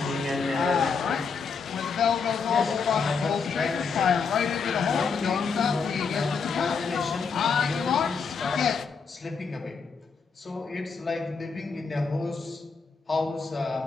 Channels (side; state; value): right; quieter; 5.4 dB